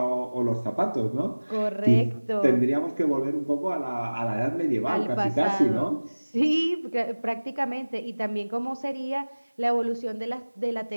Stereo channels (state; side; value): inverted; both; correlation -1.00